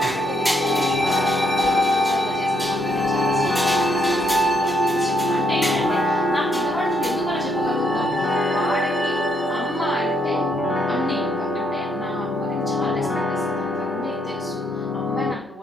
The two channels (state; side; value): normal; both; correlation 0.74